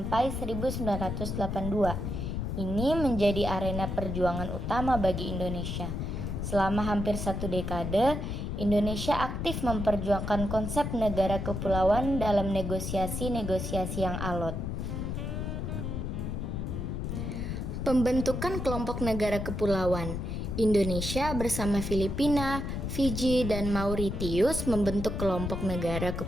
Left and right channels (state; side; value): noise; left; rumble, 3 dB below the sound